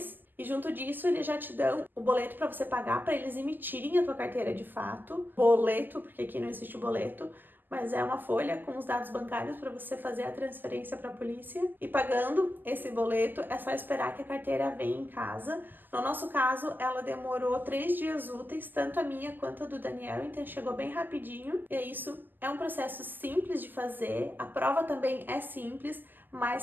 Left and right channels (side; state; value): left; late; 0.089 ms